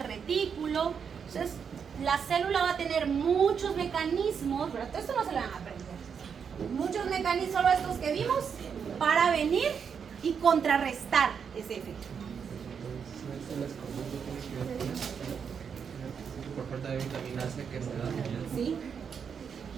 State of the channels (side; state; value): left; quieter; 6.8 dB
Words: retículo. Entonces, la célula va a tener muchos mecanismos, pero todo esto no se lo van a aprender. Muchos mecanismos, solo estos que vimos, para venir y contrarrestar ese efecto. Por falta de vitamina C que se da. ¿Sí?